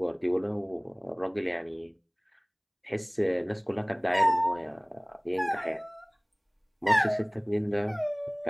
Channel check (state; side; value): identical; both; correlation 1.00